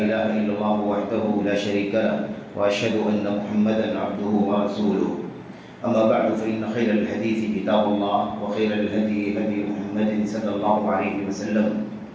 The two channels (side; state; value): both; identical; correlation 1.00